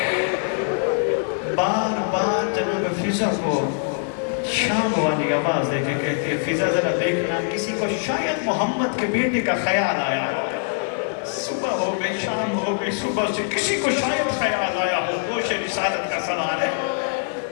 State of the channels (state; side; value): silent; right; digital silence